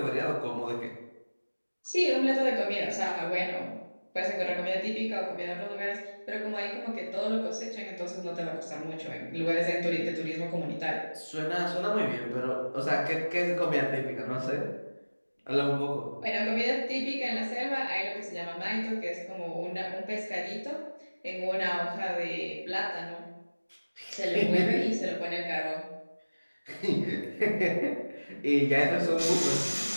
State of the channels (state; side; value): inverted; both; correlation -1.00